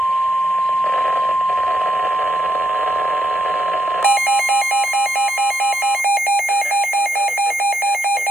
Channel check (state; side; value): normal; both; correlation 0.79